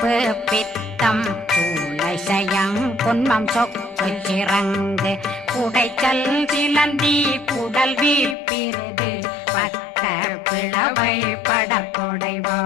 பித்தம் சயம் பொன்மம் சொக்கு சிறங்கு குடைச்சல் சிலந்தி குடல் வீப்பிருது பக்க பிளவை படற்கொடை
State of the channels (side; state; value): right; drops out; at 8.3 s